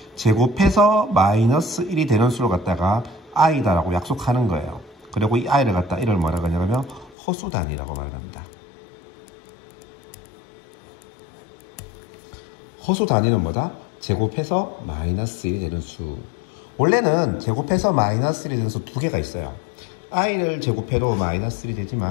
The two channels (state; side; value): drops out; right; at 7.2 s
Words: 제곱해서 마이너스 1이 되는 수를 갖다가 i다 라고 약속하는 거예요. 그리고 이 i를 갖다 이를 뭐라 그러냐면 허수 단위라고 말을 합니다. 허수 단위는 뭐다? 제곱해서 마이너스 1이 되는 수. 원래는 제곱해서 마이너스 1이 되는 수 두 개가 있어요. i를 제곱해도 마이너스 1이